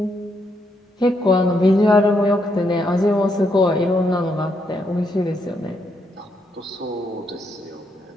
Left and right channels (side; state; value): both; normal; correlation 0.77